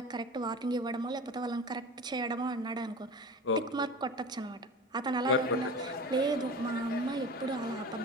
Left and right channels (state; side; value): normal; both; correlation 0.33